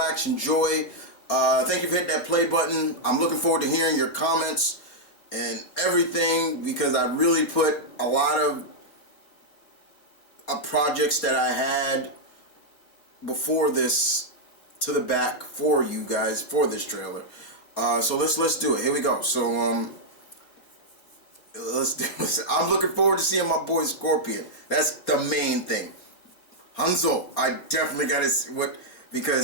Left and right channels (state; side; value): late; right; 4.3 ms